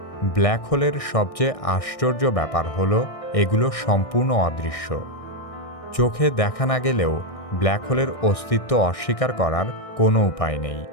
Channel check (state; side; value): late; right; 1.6 ms